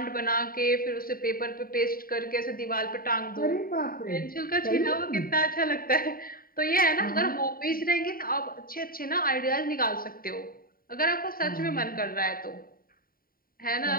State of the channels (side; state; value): right; late; 0.42 ms